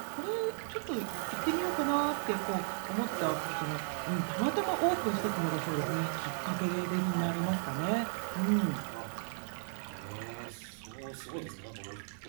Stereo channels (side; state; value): left; silent; 54 dB below the other